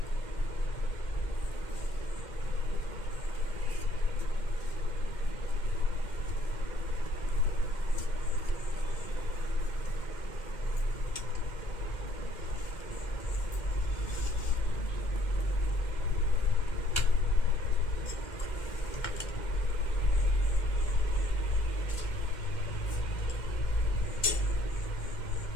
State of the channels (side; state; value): right; late; 2.1 ms